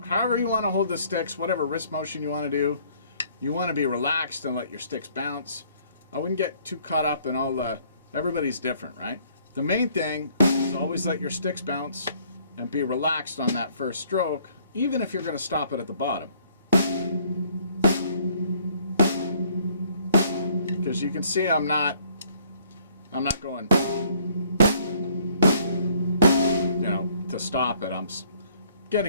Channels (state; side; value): inverted; both; correlation -0.62